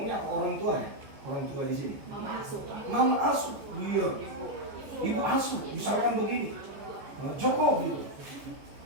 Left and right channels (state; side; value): late; left; 14 ms